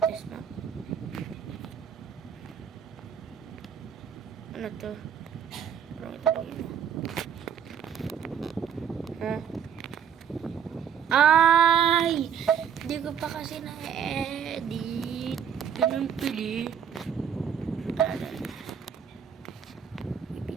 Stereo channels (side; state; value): left; quieter; 8.1 dB